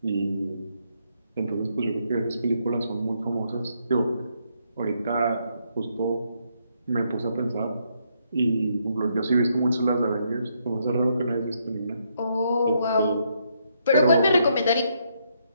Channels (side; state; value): both; inverted; correlation -0.75